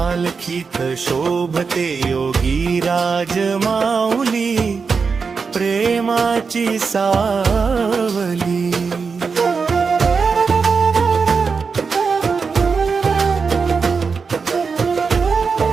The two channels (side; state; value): left; quieter; 5.2 dB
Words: शोभते योगी राज माऊली, प्रेमाची सावली।